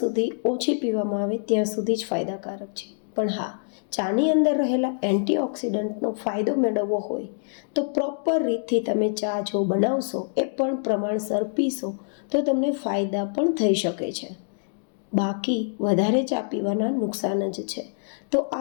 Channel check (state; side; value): silent; right; digital silence